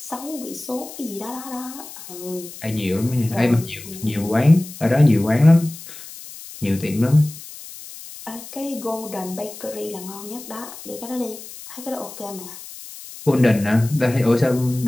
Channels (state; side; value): noise; left; hiss, 15 dB below the sound